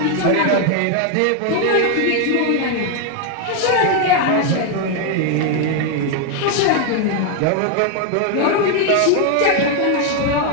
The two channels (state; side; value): different; both; correlation 0.00